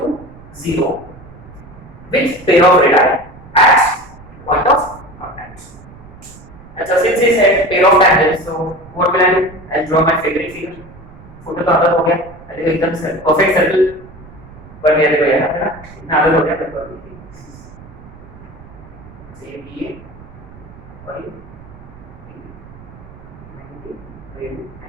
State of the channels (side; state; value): right; noise; rumble, 20 dB below the sound